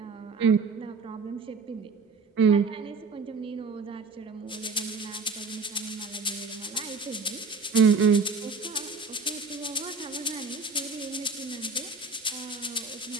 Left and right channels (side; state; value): left; quieter; 4.2 dB